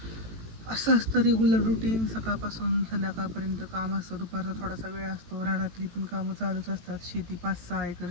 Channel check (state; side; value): late; left; 18 ms